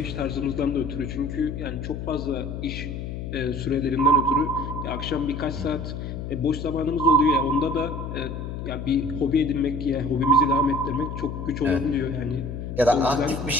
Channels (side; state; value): left; noise; hum, 6 dB below the sound